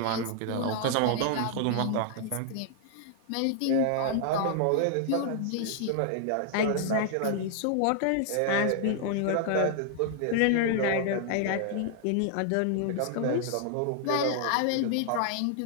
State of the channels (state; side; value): different; both; correlation 0.00